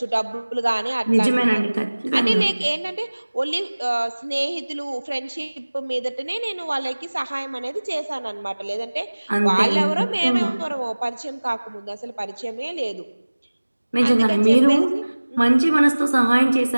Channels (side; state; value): both; inverted; correlation -1.00